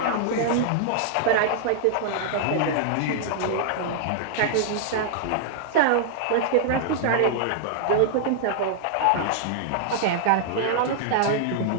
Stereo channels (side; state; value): both; different; correlation -0.01